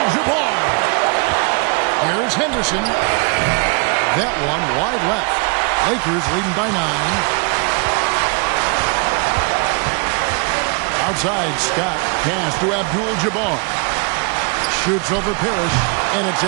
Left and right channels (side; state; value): left; quieter; 33.1 dB